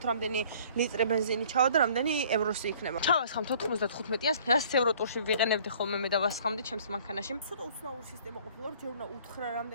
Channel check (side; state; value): both; inverted; correlation -0.54